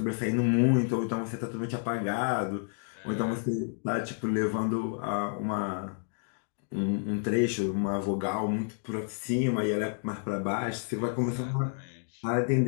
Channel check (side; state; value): right; silent; digital silence